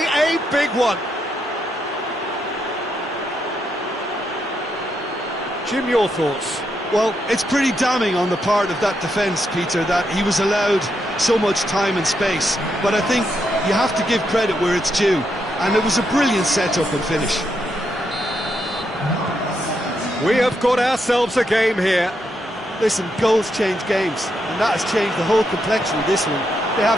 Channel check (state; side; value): normal; both; correlation 0.80